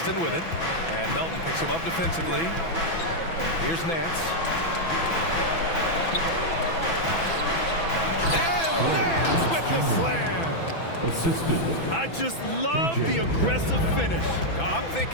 with it. And Melton picks him up defensively. Here's Nance. And Nance with the slam. Assisted. I just love the aggressive finish. I'm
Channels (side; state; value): right; late; 6.0 ms